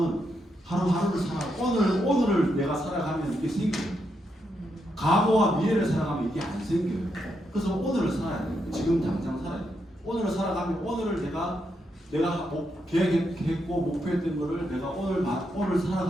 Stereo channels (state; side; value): normal; both; correlation 0.81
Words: 하루하루를 오늘을 내가 살아가면 이게 생겨요. 과거와 미래를 살아가면 이게 안 생겨요. 그래서 오늘을 살아야 돼요. 지금 당장 살아야 돼요. 오늘을 살아가면 오늘을 내가 계획했고 목표했던 거를 내가 오늘